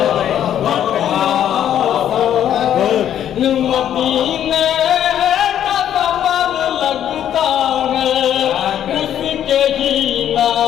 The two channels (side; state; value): right; quieter; 10.3 dB